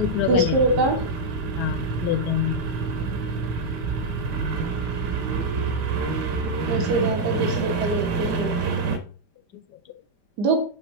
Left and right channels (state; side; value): late; left; 5.0 ms